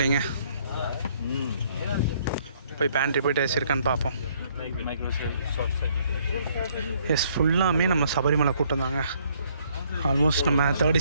போய் பேண்ட்ரி போயிட்டு ஏசி இருக்கான்னு பார்ப்போம். எஸ், ஃபுல்லாமே நம்ம சபரிமலை கூட்டம் தாங்க. ஆல்மோஸ்ட் நம்ம 3rd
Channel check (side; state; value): both; inverted; correlation -0.66